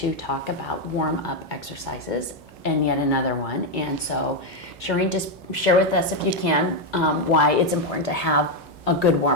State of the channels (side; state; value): right; noise; hum, 25 dB below the sound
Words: talk about warm-up exercises and yet another one. And so, Shireen, just share with us, if you can, why it's important to have a good